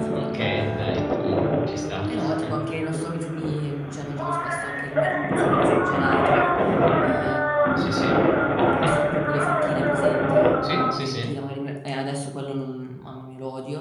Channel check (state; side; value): identical; both; correlation 1.00